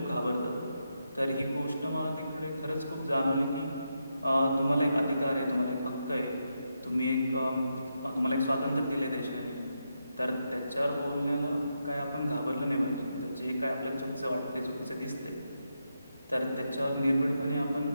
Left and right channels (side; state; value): both; inverted; correlation -0.85